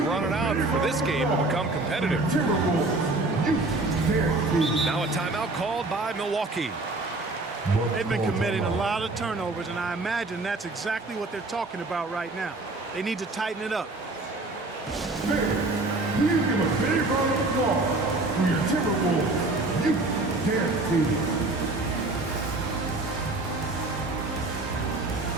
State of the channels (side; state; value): left; quieter; 3.0 dB